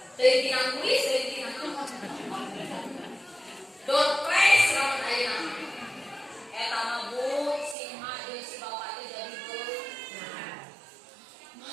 Teuing tinang kuis, teuing tinang door prize lamun ayeuna. Eta mah bu si Mak jeung si Bapak teh jadi beuh.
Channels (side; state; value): left; drops out; at 7.8 s